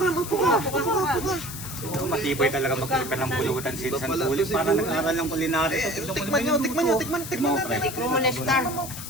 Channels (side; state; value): left; noise; hiss, 10 dB below the sound